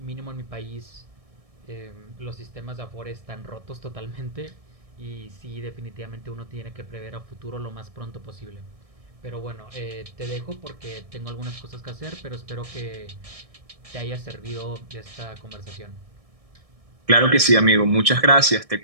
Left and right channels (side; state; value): left; late; 1.6 ms